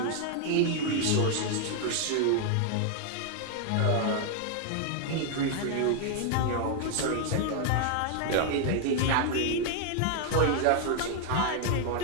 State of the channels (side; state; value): both; different; correlation 0.00